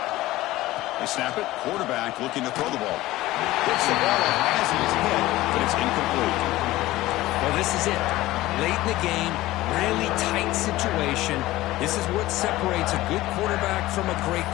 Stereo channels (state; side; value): quieter; right; 17.2 dB